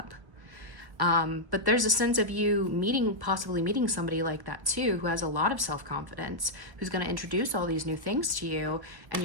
But there's a sense of you possibly meeting somebody like that too, who has a lot of self-confidence, who's going to introduce all these new things to you, and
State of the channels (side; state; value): left; late; 1.1 ms